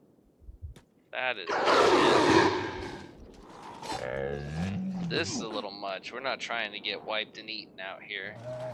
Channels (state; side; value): identical; both; correlation 1.00